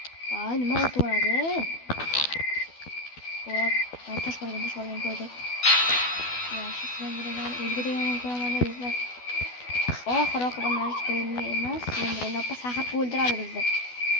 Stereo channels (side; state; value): right; late; 12 ms